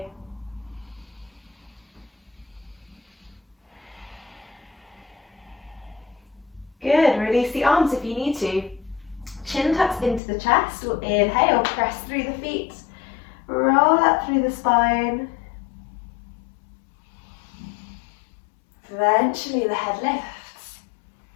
Good, release the arms if you need to. Chin tucks into the chest. We'll inhale, press through the feet. Roll up through the spine. Eventually the head lifts.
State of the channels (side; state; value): right; drops out; at 10.2 s